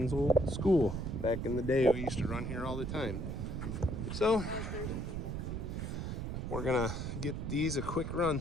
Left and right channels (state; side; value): noise; right; rumble, 4 dB below the sound